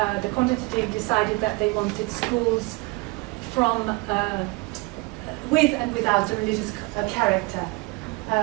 the quantitative decided that they wanted schools from with and without a religious character.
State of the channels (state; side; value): quieter; left; 26.2 dB